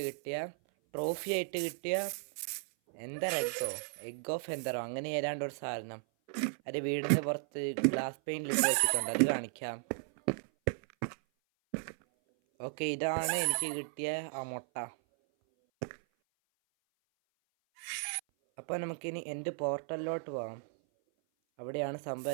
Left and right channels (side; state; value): left; silent; 54 dB below the other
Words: കിട്ടിയ ട്രോഫി ആയിട്ട് കിട്ടിയ എഗ് ഓഫ് എന്തറോ അങ്ങനെ ഏതാണ്ട് ഒരു സാധനം അത് വീടിൻ്റെ പുറത്ത് ഗ്ലാസ് പെയിൻറ്റിലിട്ട് വെച്ചിട്ടുണ്ട്. അത് കാണിക്കാം. ഓക്കെ, ഇതാണ് എനിക്ക് കിട്ടിയ ആ മുട്ട. അപ്പോൾ നമുക്കിനി എൻ്റെ പോർട്ടലിലോട്ട് പോകാം. അവിടെയാണ്